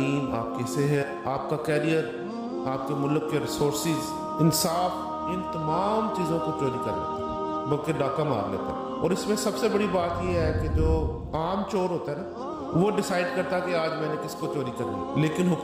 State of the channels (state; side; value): identical; both; correlation 1.00